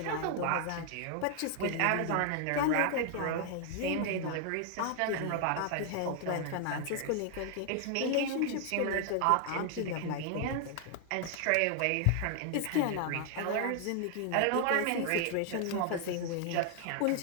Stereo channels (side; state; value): both; different; correlation 0.00